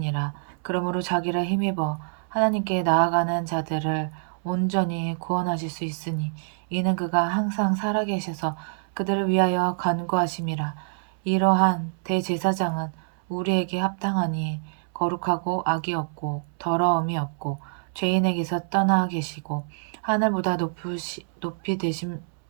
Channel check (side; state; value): left; silent; 61 dB below the other